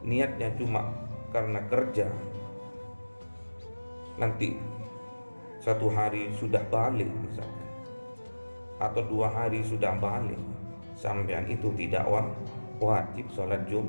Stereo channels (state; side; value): inverted; both; correlation -1.00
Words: niatnya cuma karena kerja, nanti 1 hari sudah balik misalkan, atau 2 hari sudah balik, sampean itu tidak wajib sholat